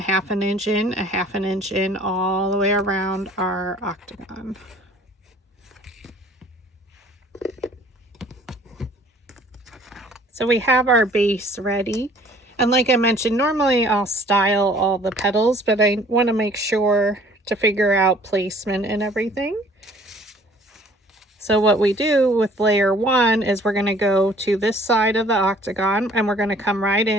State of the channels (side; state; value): both; normal; correlation 0.55